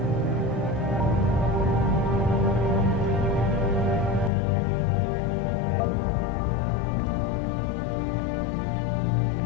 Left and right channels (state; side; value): drops out; right; at 4.3 s